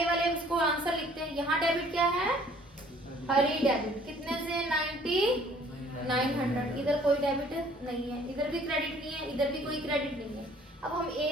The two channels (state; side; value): normal; both; correlation 0.56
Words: वाले उसको आंसर लिखते हैं। यहाँ डेबिट क्या है? हरी डेबिट। कितने से? 9,900। इधर कोई डेबिट नहीं है, इधर भी क्रेडिट नहीं है, इधर भी कोई क्रेडिट नहीं है। अब हम